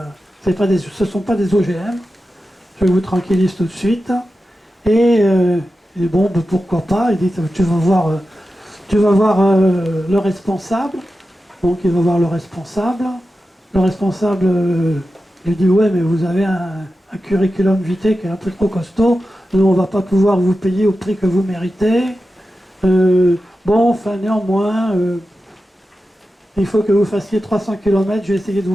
sont pas des OGM. Je vous tranquillise tout de suite. Et bon, ben, pourquoi pas. Il dit, tu vas voir le responsable. Donc il va voir le responsable. Le responsable lui dit, ouais, mais vous avez un curriculum vitae qui est un peu trop costaud. Nous, on ne va pas pouvoir vous payer au prix que vous méritez. Bon, enfin, néanmoins, il faut que vous fassiez 300 km. Je vais essayer de vous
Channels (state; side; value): normal; both; correlation 0.92